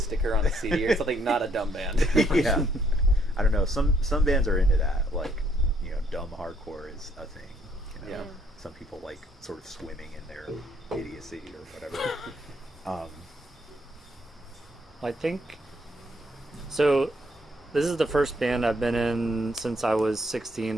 on a CD or something. Not a dumb band. Yeah. I don't know. Some bands are into that. Like, you know, dumb hardcore is a thing. You know? Yeah. Some people like sort of swimming in their idiocy or whatever. I think so. This is the first band I've been in since I was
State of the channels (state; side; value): normal; both; correlation 0.68